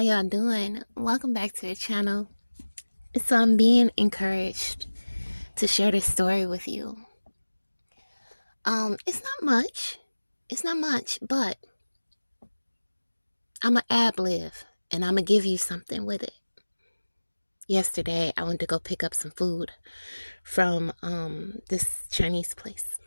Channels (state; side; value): inverted; both; correlation -1.00